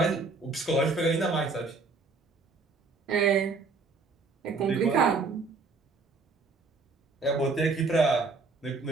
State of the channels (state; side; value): quieter; left; 4.0 dB